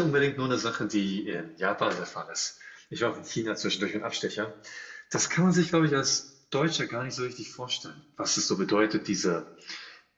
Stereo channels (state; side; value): identical; both; correlation 1.00